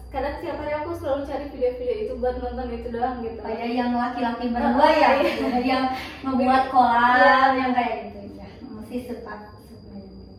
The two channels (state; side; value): identical; both; correlation 1.00